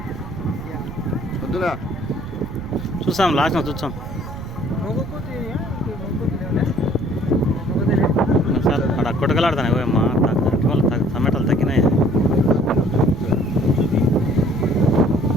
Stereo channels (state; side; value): noise; right; rumble, 11 dB below the sound